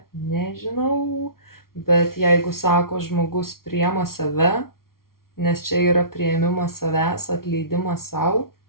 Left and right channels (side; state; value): right; late; 0.93 ms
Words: nežinau, bet jeigu sako žmogus priima save, nes čia yra priėmimas savęs, atleidimas savo,